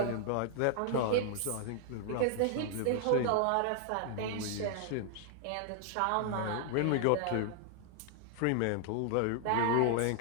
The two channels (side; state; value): both; different; correlation -0.01